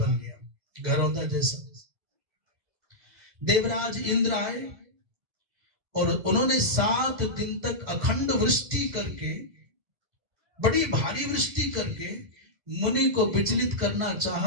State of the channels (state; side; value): late; left; 1.7 ms